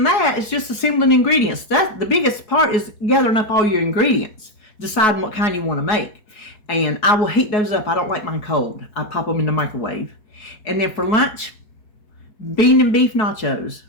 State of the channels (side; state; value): right; late; 4.7 ms